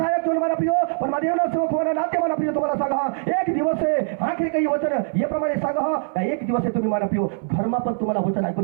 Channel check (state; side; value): silent; left; 64 dB below the other